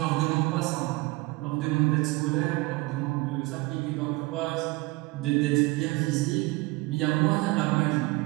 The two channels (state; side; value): quieter; left; 22.7 dB